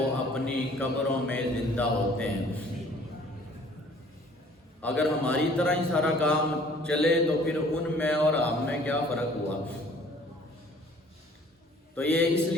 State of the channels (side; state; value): both; normal; correlation 0.54